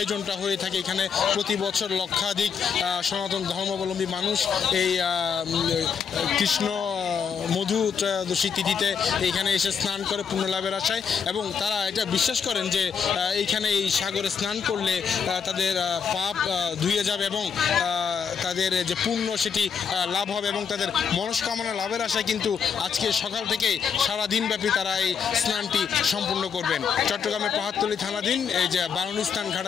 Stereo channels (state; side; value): quieter; right; 6.7 dB